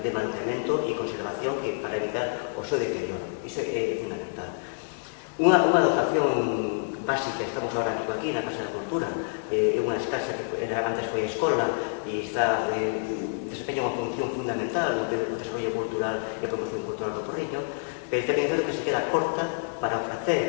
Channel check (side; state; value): right; silent; digital silence